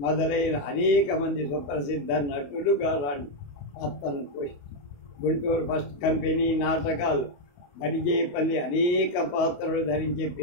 మొదలైన అనేక మంది సుప్రసిద్ధ నటులు గారాన్ని పాత్రను పోషించారు. గుంటూరు ఫస్ట్ కంపెనీ నాటకాలు బడిజేపల్లి అనేక పాత్రలు ధరించి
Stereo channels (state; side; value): late; right; 28 ms